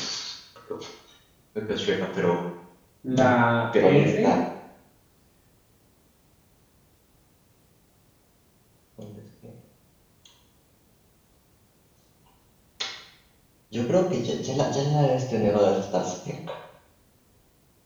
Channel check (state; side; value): identical; both; correlation 1.00